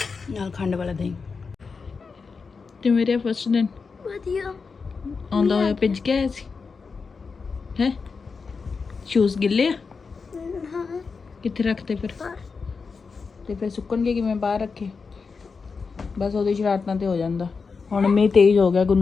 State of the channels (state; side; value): quieter; right; 5.0 dB